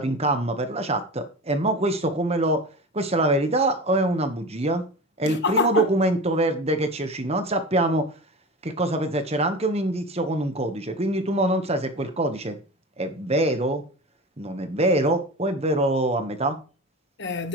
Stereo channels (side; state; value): both; normal; correlation 0.31